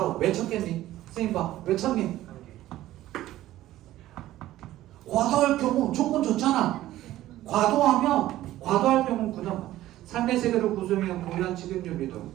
왜 쳤겠니? 선생님 봐. 왜 쳤니? 과도할 경우 조건 좋잖아. 과도할 경우는 그다음 삶의 세계를 구성해온 고유한 직영유비도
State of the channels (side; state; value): left; quieter; 14.7 dB